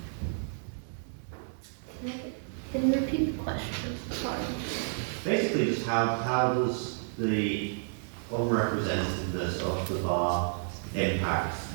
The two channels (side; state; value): left; silent; digital silence